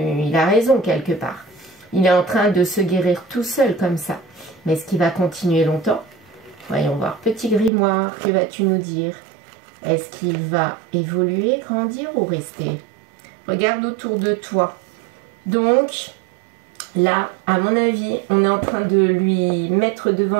Il a raison quelque part. Il est en train de se guérir tout seul comme ça. Mais est-ce qu'il va continuer longtemps? Voyons voir. Petit grimoire, que vas-tu nous dire? Est-ce qu'il va évoluer, grandir ou rester? Regarde autour de toi. Donc, là, à mon avis, on est en train de lui mettre devant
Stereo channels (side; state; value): left; drops out; at 7.7 s